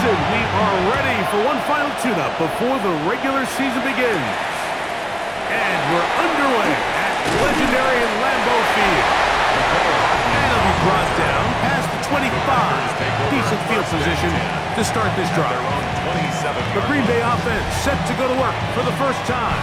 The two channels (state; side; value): identical; both; correlation 1.00